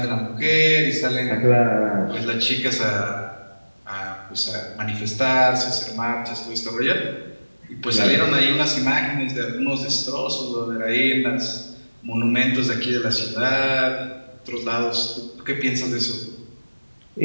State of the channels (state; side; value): inverted; both; correlation -1.00